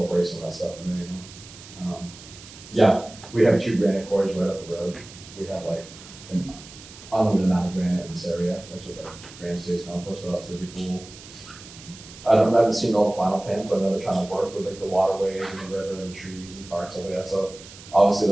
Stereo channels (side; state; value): right; noise; hiss, 18 dB below the sound